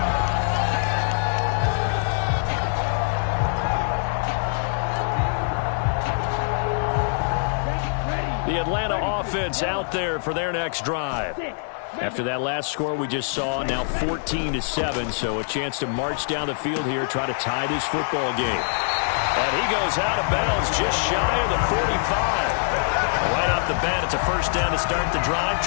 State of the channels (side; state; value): right; silent; digital silence